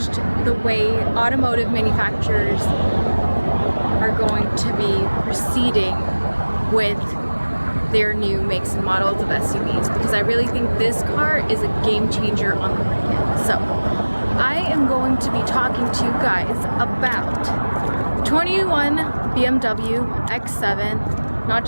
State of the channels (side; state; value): both; inverted; correlation -1.00